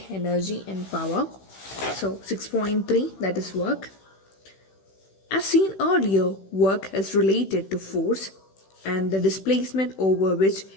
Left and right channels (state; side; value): late; right; 16 ms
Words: energy, and power. So, 6.3, that is work. As seen earlier, work is related to force and the displacement over which